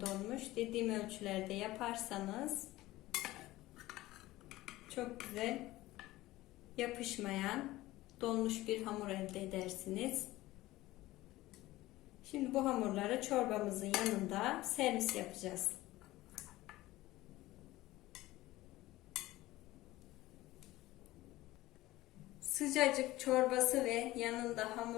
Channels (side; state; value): right; quieter; 17.6 dB